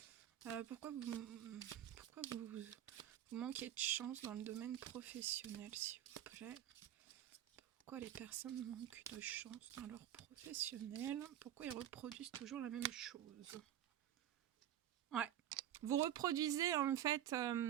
Pourquoi vous manquez de chance dans le domaine professionnel, s'il vous plaît? Pourquoi les personnes manquent de chance dans leur professionnel? Pourquoi ils reproduisent toujours la même chose? Ouais. Vous reproduisez en fait...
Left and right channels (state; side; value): quieter; left; 11.2 dB